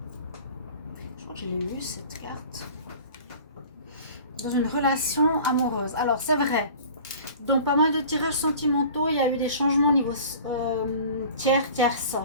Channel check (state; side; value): inverted; both; correlation -0.43